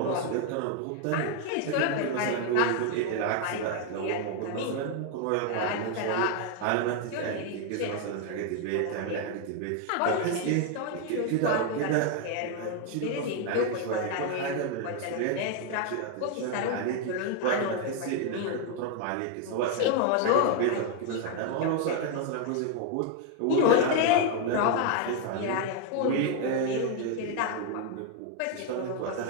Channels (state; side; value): different; both; correlation 0.00